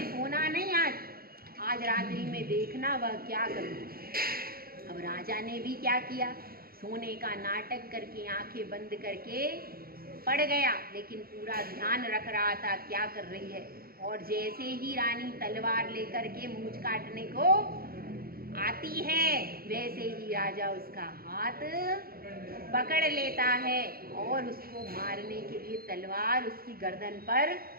सोना नहीं, आज रात्रि में देखना वह क्या करूँगी। अब राजा ने भी क्या किया, सोने का नाटक करके आंखें बंद करके पड़ गया, लेकिन पूरा ध्यान रख रहा था क्या कर रही है। और जैसे ही रानी तलवार लेकर के मूंछ काटने को आती है वैसे ही राजा उसका हाथ पकड़ लेता है और उसको मारने के लिए तलवार उसकी गर्दन पर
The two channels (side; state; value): left; late; 0.44 ms